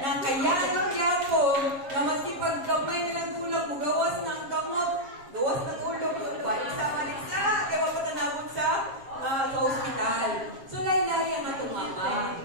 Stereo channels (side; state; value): left; late; 7.4 ms